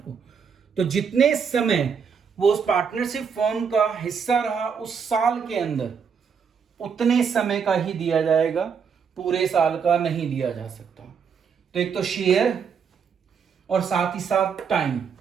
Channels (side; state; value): left; quieter; 6.5 dB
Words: तो जितने समय वो उस पार्टनरशिप फर्म का हिस्सा रहा उस साल के अंदर, उतने समय का ही दिया जाएगा, पूरे साल का नहीं दिया जा सकता। तो एक तो शेयर और साथ ही साथ टाइम,